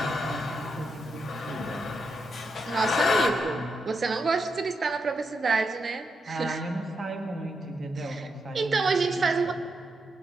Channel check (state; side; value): normal; both; correlation 0.83